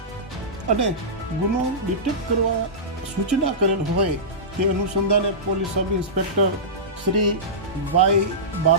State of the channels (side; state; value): both; normal; correlation -0.18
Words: અને ગુનો ડિટેક્ટ કરવા સૂચના કરેલ હોય તે અનુસંધાને police sub inspector Shri Y